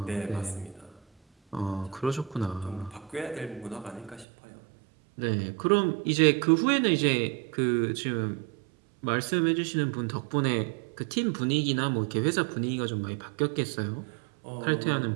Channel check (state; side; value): drops out; left; at 4.2 s